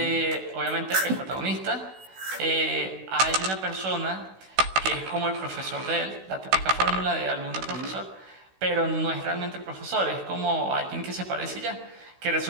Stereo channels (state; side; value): late; left; 16 ms